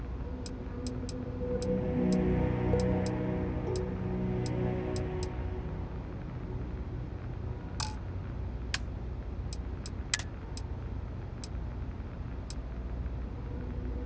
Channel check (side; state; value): both; identical; correlation 1.00